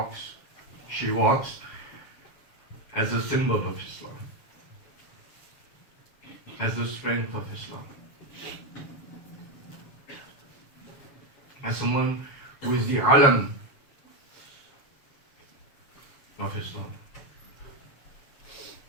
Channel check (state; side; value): late; right; 7.2 ms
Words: as a symbol of Islam, as the strength of Islam, as someone who is the alam of Islam.